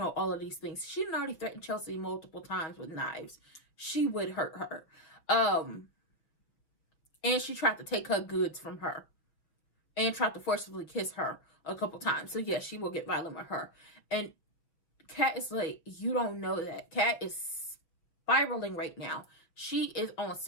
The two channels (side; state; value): right; late; 6.2 ms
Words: all of these things. She had already threatened Chelsea multiple times with knives. She would hurt her. And she tried to take her goods from her and tried to forcibly kiss her a couple times. So, yes, she will get violent with her. And Kat is like, you don't know that. Kat is spiraling right now. She is on